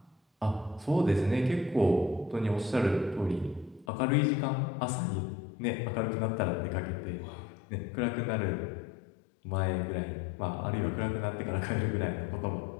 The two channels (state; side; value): drops out; right; at 3.9 s